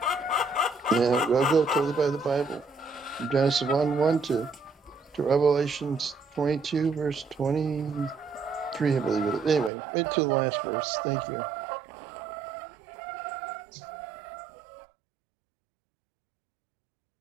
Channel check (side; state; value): left; drops out; at 9.7 s